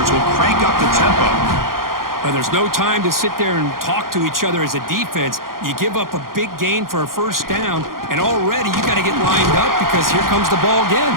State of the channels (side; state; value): left; late; 0.91 ms